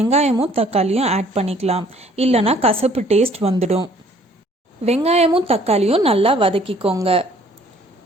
தக்காளியும் ஆட் பண்ணிக்கலாம், இல்லைனா கசப்பு டேஸ்ட் வந்துடும். வெங்காயமும் தக்காளியும் நல்லா வதக்கிக்கோங்க.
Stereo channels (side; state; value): both; normal; correlation 0.58